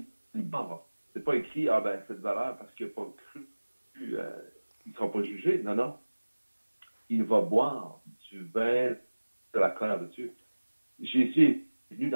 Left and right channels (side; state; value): both; inverted; correlation -1.00